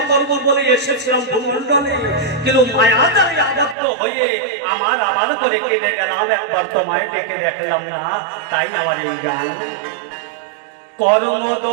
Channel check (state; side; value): drops out; left; at 3.8 s